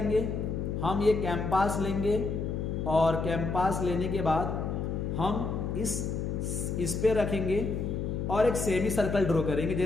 हम ये कैंपास लेंगे, और कैंपास लेने के बाद हम इस पे रखेंगे और एक सेमी सर्कल ड्रॉ करेंगे,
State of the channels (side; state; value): left; noise; hum, 2 dB below the sound